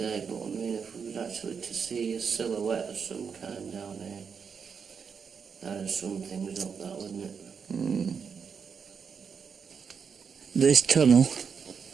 But I mean, if we was actually to see a silhouette of some kind down here, that'd sum things up, that wouldn't it? This tunnel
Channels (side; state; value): left; quieter; 6.3 dB